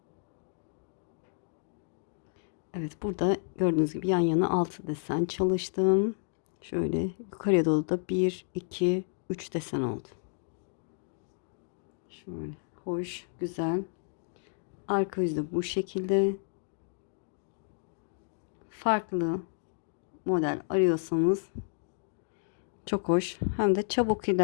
Evet, burada gördüğünüz gibi yan yana 6 desen çalıştım. Şöyle yukarıya doğru da 1, 2, 3 desen oldu. Şöyle hoş, güzel. Arka yüzde bu şekilde. Farklı model arıyorsanız çok hoş. Hem de çabuk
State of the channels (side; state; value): right; silent; digital silence